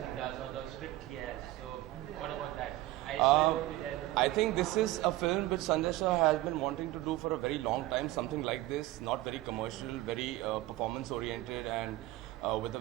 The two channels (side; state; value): left; quieter; 17.1 dB